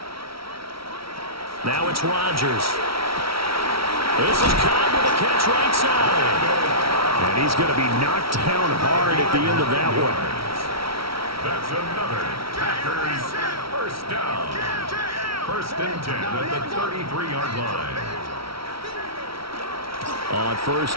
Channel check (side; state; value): left; late; 0.75 ms